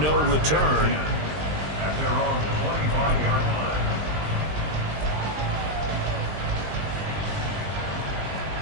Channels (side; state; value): left; late; 20 ms